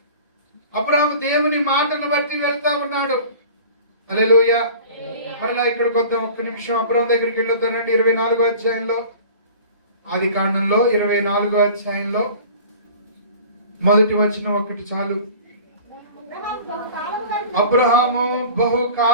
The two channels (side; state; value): both; inverted; correlation -0.42